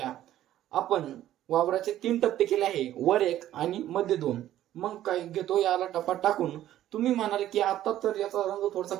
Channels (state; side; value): quieter; left; 12.8 dB